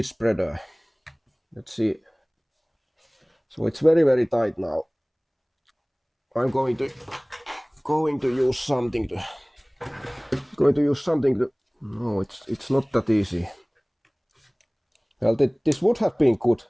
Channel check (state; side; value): identical; both; correlation 1.00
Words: spreader. Let's see. So it's very tight now. I'm going to use something to no, it's not that easy. Well, this would have been good